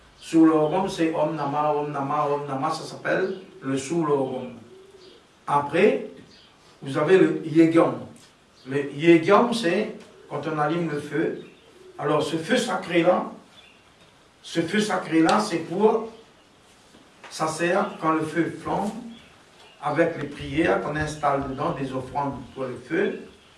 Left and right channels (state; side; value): identical; both; correlation 1.00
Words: Sulogam, c'est Om Nama, Om Nama, Om Nama, ça s'appelle le Sulogam. Après, vous avez le Yegyam. Le Yegyam, c'est quand on allume le feu. Alors, ce feu sacré-là, c'est pour, ça sert quand le feu flambe, avec les prières qu'on installe dedans, des offrandes pour le feu,